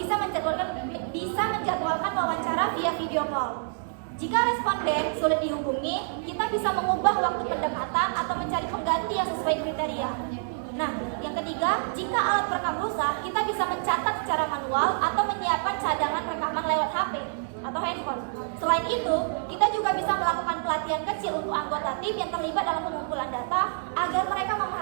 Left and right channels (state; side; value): silent; left; digital silence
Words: menjadwalkan wawancara via video call. Jika responden sulit dihubungi, kita bisa mengubah waktu pendekatan atau mencari pengganti yang sesuai kriteria. Nah, yang ketiga, jika alat perekam rusak, kita bisa mencatat secara manual atau menyiapkan cadangan rekaman lewat HP atau handphone. Selain itu, kita juga bisa melakukan pelatihan kecil untuk anggota tim yang terlibat dalam pengumpulan data agar mereka